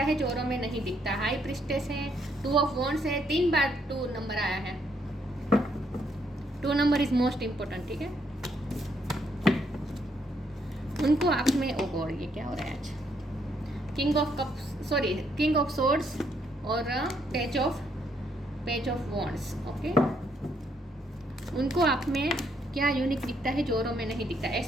है जो औरों में नहीं दिखता। हाई प्रिस्टेस है, 2 ऑफ वॉन्ड्स है। 3 बार 2 नंबर आया है। 2 नंबर इज मोस्ट इंपॉर्टेंट, ठीक है। उनको आप में ओ गॉड, ये क्या हो रहा है आज। King of cups, sorry, king of swords और पेज ऑफ वॉन्ड्स। ओके, उनको आप में क्या यूनिक दिखता है जो औरों में नहीं दिखता।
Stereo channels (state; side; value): normal; both; correlation 0.73